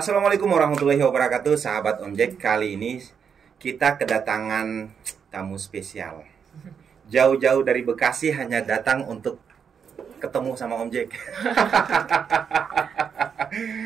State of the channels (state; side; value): quieter; left; 7.0 dB